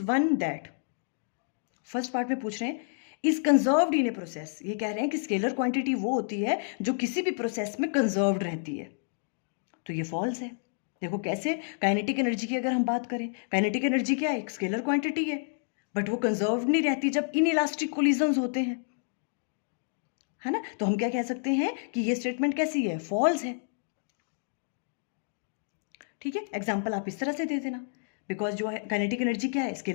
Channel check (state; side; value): silent; right; digital silence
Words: one that, first part में पूछ रहे हैं is conserved in a process, ये कह रहे हैं कि स्केलर क्वांटिटी वो होती है जो किसी भी प्रोसेस में कंजर्व्ड रहती है, तो ये फॉल्स है। देखो कैसे, काइनेटिक एनर्जी की अगर हम बात करें, काइनेटिक एनर्जी क्या है, एक स्केलर क्वांटिटी है, बट वो कंजर्व नहीं रहती जब इनइलास्टिक कोलिजन्स होते हैं, है ना। तो हम क्या कह सकते हैं कि ये स्टेटमेंट कैसी है, फॉल्स है, ठीक है। एग्जाम्पल आप इस तरह से दे देना, बिकॉज जो है काइनेटिक एनर्जी क्या है,